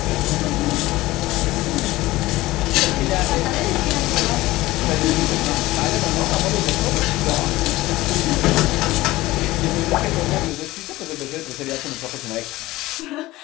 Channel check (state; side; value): quieter; right; 18.3 dB